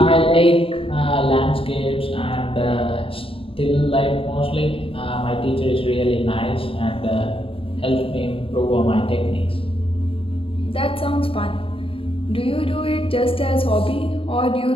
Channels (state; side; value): late; right; 0.27 ms